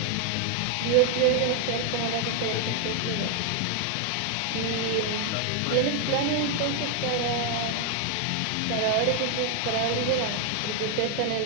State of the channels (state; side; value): different; both; correlation 0.00